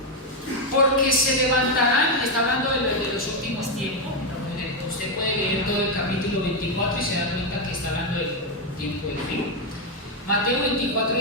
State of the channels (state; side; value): normal; both; correlation 0.04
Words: Porque se levantarán, está hablando de los últimos tiempos. Usted puede leer todo el capítulo 24 y se da cuenta que está hablando del tiempo del fin. Mateo 24